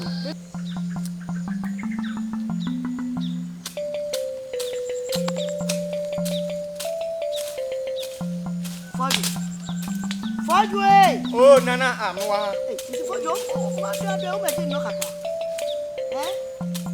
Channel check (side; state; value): both; identical; correlation 1.00